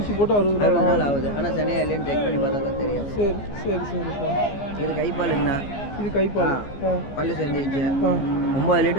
போட்டு 60 நாள் ஆகுது. ஆனால் சனியா இல்லைன்னு செக் பண்ணி பார்த்தா தான் தெரியும். சரி சரி சரிப்பா. இது கைப்பாலுங்கண்ணா. இது கைப்பால். பல்லு சேர்ந்துச்சு. 9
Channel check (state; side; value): late; right; 14 ms